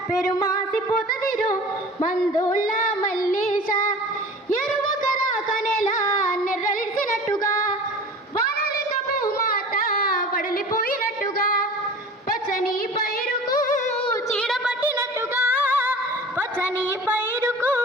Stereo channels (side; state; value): both; normal; correlation 0.40